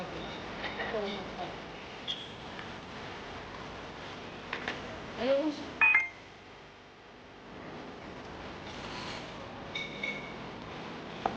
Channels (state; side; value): identical; both; correlation 1.00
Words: rin. Ito mo pa. Ayun.